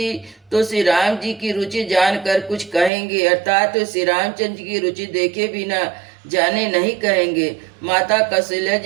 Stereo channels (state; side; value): drops out; left; at 2.9 s